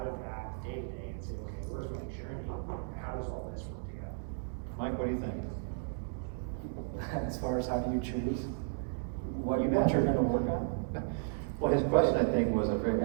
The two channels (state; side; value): silent; left; digital silence